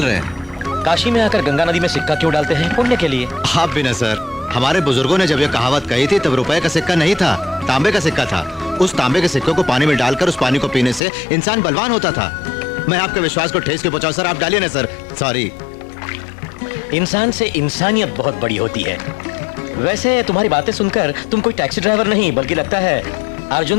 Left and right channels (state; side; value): drops out; right; at 11.0 s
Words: रहे हैं? काशी में आकर गंगा नदी में सिक्का क्यों डालते हैं? पुण्य के लिए। आप भी न सर, हमारे बुजुर्गों ने जब ये कहावत कही थी तब रुपए का सिक्का नहीं था, तांबे का सिक्का था। उस तांबे के सिक्के को पानी में डालकर उस पानी को पीने से इंसान बलवान होता था। मैं आपके विश्वास को ठेस के पहुंचाऊं सर, आप डालिए ना सर। सॉरी। इंसान से इंसानियत बहुत बड़ी होती है। वैसे तुम्हारी बातें सुनकर तुम कोई टैक्सी ड्राइवर नहीं, बल्कि लगता है